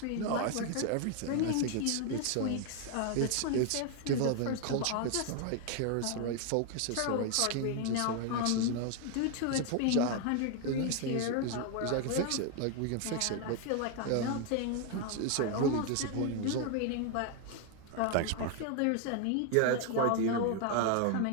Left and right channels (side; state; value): both; different; correlation 0.00